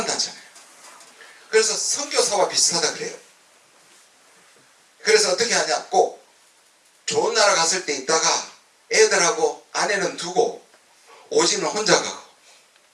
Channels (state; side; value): identical; both; correlation 1.00